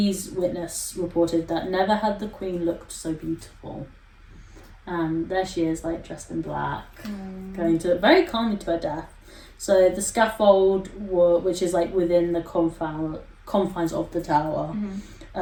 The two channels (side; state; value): both; identical; correlation 1.00